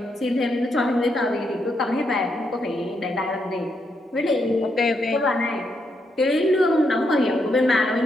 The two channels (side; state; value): both; normal; correlation 0.79